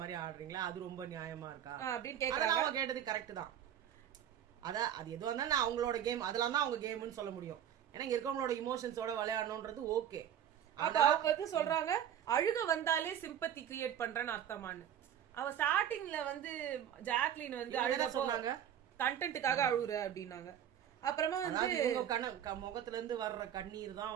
மாதிரி ஆடுறீங்களா? அது ரொம்ப நியாயமா இருக்கா அப்படின்னு கேக்குறாங்க. அவங்க கேட்டது கரெக்ட் தான். அது எதுவா இருந்தாலும் அவங்களோட கேம், அதெல்லாம் தான் அவங்க கேம்னு சொல்ல முடியும். ஏன்னா இங்க இருக்கவங்களோட இமோஷன்ஸோட விளையாடணும்ன்றது ஓகே. அப்ப அவங்க வந்து சொல்றாங்க அழுக வந்தாலே சிம்பத்தி கிரியேட் பண்றேன்னு அர்த்தமானு. அவ ஸ்டார்டிங்ல வந்து ஜாக்லின் வந்து அழுக சொன்னாங்க, கண்டென்ட்டுக்காக அழுகுற அப்படின்னாங்க. அப்புறமா வந்து முகத்துல இருந்து வர்ற கண்ணீர் தான்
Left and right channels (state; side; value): quieter; left; 10.0 dB